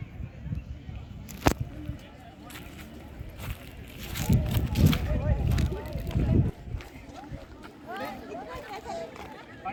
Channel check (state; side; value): identical; both; correlation 1.00